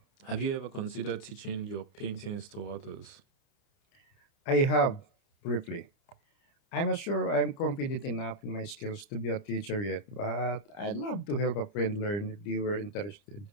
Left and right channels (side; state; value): right; late; 30 ms